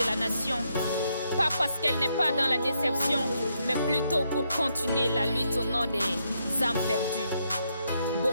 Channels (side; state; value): both; inverted; correlation -0.78